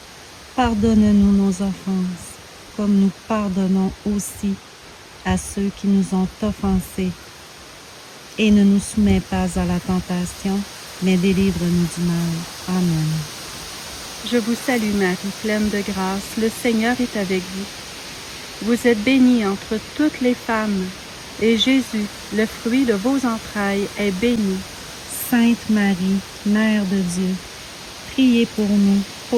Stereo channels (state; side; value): identical; both; correlation 1.00